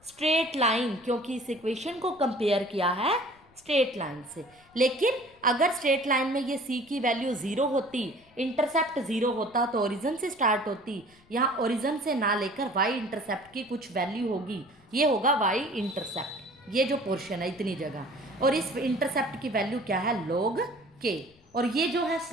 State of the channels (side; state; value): left; noise; rumble, 30 dB below the sound